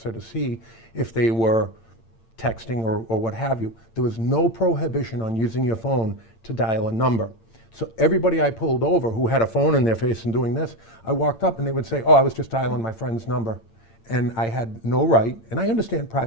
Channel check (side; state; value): right; late; 8.8 ms